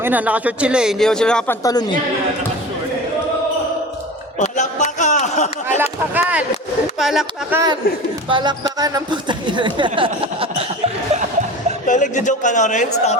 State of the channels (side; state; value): both; normal; correlation 0.34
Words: naka-short sila eh. Hindi naman sila nakapantalon eh. Palakpak ka! Palakpakan! Palakpakan! Palakpakan ang putang ina niya. Nagjo-joke ka na, Renz?